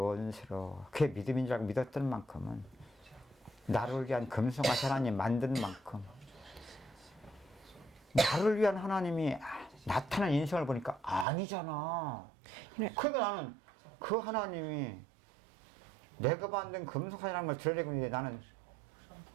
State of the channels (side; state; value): left; drops out; at 11.2 s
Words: 그게 믿음인 줄 알고 믿었던 만큼은 나를 위한 금송아지 하나님 만든 만큼 나를 위한 하나님이 나타난 인생을 보니까 아니잖아. 그러니까 나는 그 하나님이 내가 만든 금송아지라는 걸 드러내고 있는데 나는